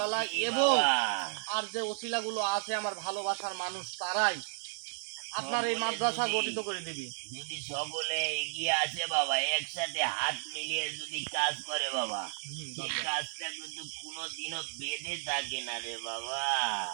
জি এবং বাবা। আর যে ওসিলাগুলো আছে আমার ভালোবাসার মানুষ, তারাই আপনার এই সকলে মাদ্রাসা যদি গঠিত করে দিবি। যদি সকলে এগিয়ে আসে বাবা, একসাথে হাত মিলিয়ে যদি কাজ করে বাবা, সেই বাবা, কাজটা কিন্তু কোনোদিনও বেঁধে থাকে না রে বাবা।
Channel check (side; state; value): left; silent; 56 dB below the other